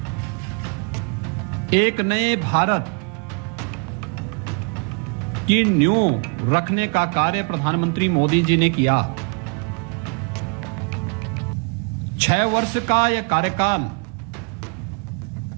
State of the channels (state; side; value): quieter; left; 37.9 dB